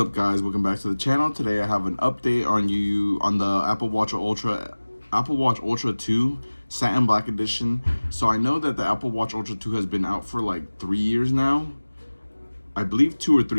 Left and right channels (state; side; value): inverted; both; correlation -1.00